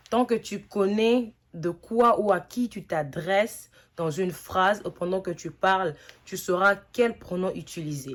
Tant que tu connais de quoi ou à qui tu t'adresses dans une phrase ou pendant que tu parles, tu sauras quel pronom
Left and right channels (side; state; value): both; identical; correlation 1.00